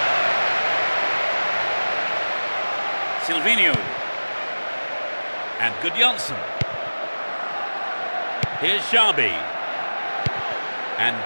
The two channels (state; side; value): inverted; both; correlation -1.00